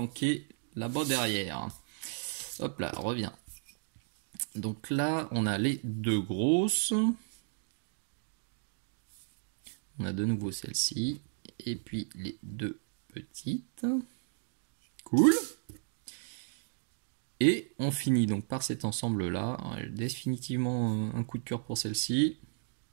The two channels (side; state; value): left; silent; digital silence